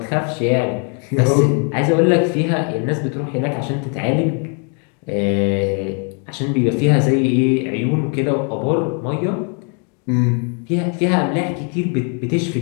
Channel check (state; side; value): quieter; right; 39.9 dB